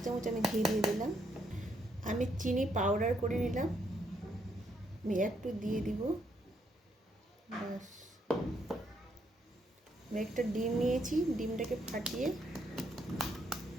চামচ আমি ঘি দিয়ে দিলাম। আমি চিনি পাউডার করে নিলাম, আমি একটু দিয়ে দিব। ব্যাস। আমি একটা ডিম নিয়েছি, ডিমটাকে ফাটিয়ে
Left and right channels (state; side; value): normal; both; correlation 0.74